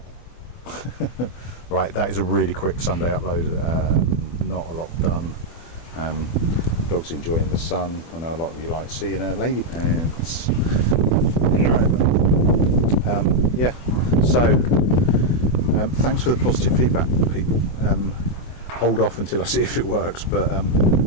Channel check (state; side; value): late; right; 24 ms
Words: Right, that is a really quick Sunday upload. Not a lot done. Dog's enjoying the sun. I know a lot of you like seeing her lady pants. Yeah, so thanks for the positive feedback, people. hold off until I see if it works, but I